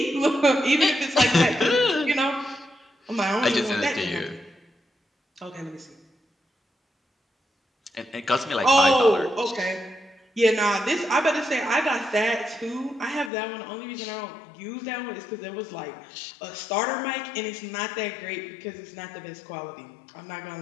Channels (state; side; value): drops out; right; at 13.3 s